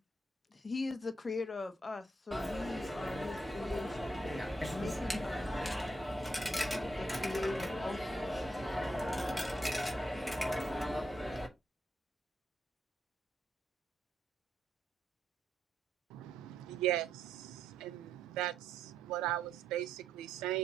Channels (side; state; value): both; normal; correlation 0.79